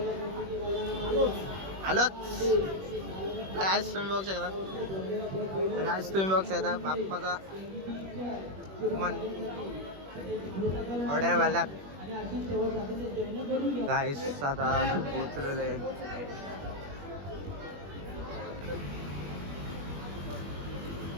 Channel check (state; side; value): late; left; 21 ms